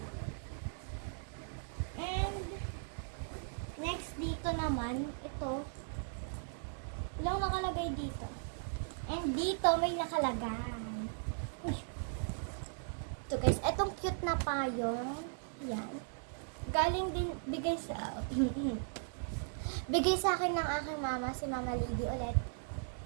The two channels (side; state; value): left; silent; digital silence